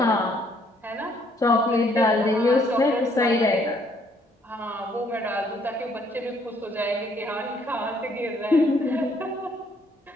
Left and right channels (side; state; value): both; normal; correlation 0.66